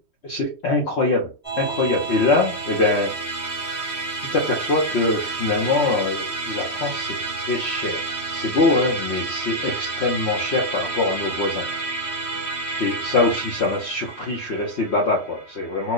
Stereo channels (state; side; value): late; right; 3.1 ms